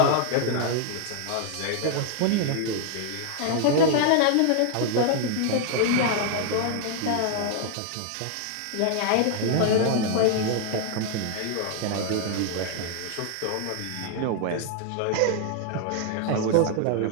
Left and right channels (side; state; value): both; different; correlation 0.00